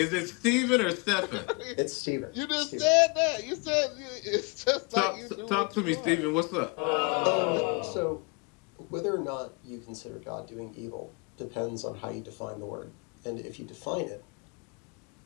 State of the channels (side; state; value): right; quieter; 30.8 dB